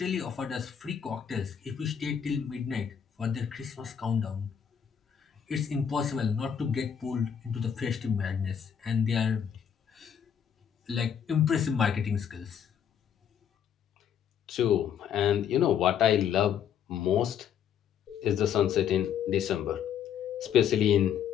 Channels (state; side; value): quieter; right; 8.3 dB